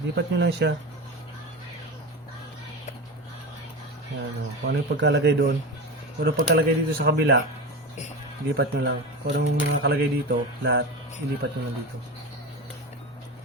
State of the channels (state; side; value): normal; both; correlation 0.24